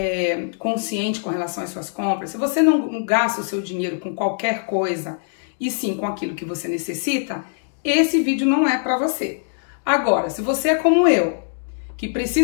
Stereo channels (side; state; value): right; silent; digital silence